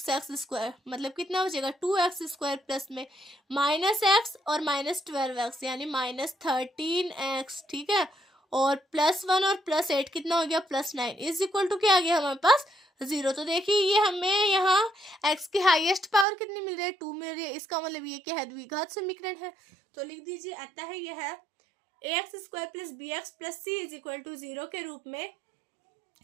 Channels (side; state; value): left; drops out; at 16.2 s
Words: स्क्वायर मतलब कितना हो जाएगा 2x स्क्वायर प्लस में माइनस x और माइनस 12x यानी माइनस 13x। ठीक है, और प्लस 1 और प्लस 8 कितना हो गया प्लस 9 इज इक्वल टू क्या आ गया हमारे पास 0। तो देखिए ये हमें यहाँ x की हाईएस्ट पावर कितनी मिल रही है 2 मिल रही है, इसका मतलब ये क्या है द्विघात समीकरण है। तो लिख दीजिए अतः है यह है ax square plus B x plus C is equal to 0 के रूप में